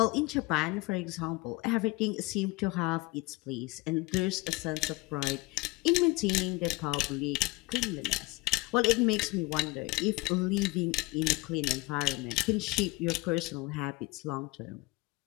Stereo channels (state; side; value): quieter; right; 22.9 dB